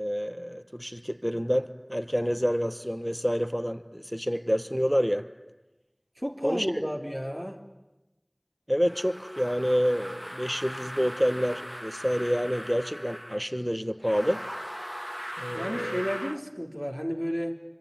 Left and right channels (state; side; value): identical; both; correlation 1.00